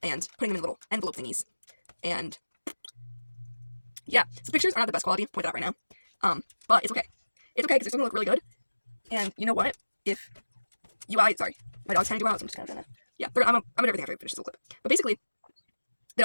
and putting them in little envelope thingies. And yeah, so pictures are not the best quality, point that out right now. But it's okay. It's okay because it's gonna look really good. And you know what? If sorry, my dog's trying to do out, so I'm just kind of doing that. Yeah, I'm gonna do everything after I finish this little clip. But basically, they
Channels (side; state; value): both; inverted; correlation -1.00